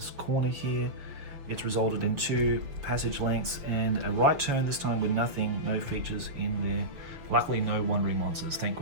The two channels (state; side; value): late; left; 6.3 ms